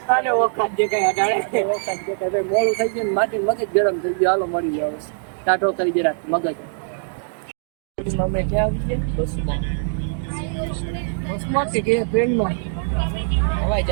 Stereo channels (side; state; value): left; silent; digital silence